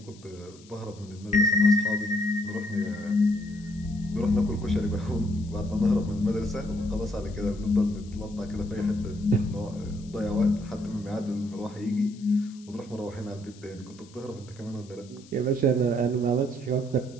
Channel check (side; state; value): left; noise; hiss, 24 dB below the sound